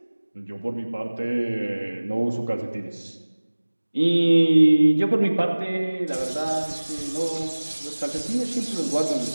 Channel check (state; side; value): inverted; both; correlation -1.00